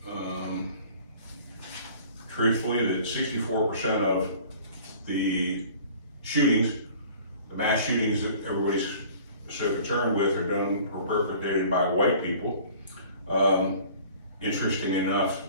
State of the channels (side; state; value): both; inverted; correlation -0.49